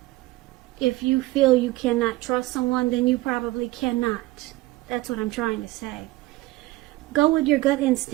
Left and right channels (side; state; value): left; quieter; 19.2 dB